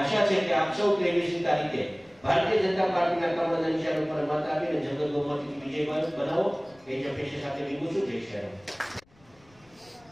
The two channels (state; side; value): noise; left; rumble, 30 dB below the sound